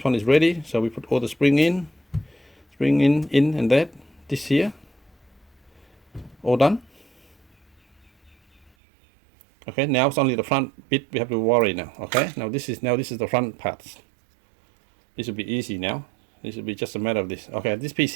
one is ready, so we put all the spring in, and that, this here, all done. Okay, now it's only the front bit we have to worry now. Okay, now this is the front parts. This will be easy now. This will be just a matter of this. Okay, this piece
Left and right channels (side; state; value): left; drops out; at 8.7 s